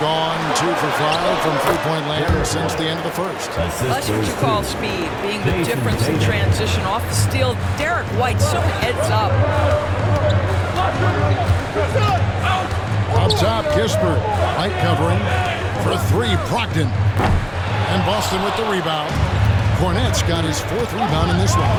2 for 5 from three-point land since the end of the first. That's what you call speed, being the difference in transition. Off the steal, Derek White so heads up. Up top, Kispert. White covering for 3, Brogdon. And Boston with the rebound. Cornette's got his 4th rebound in this one.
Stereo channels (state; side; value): identical; both; correlation 1.00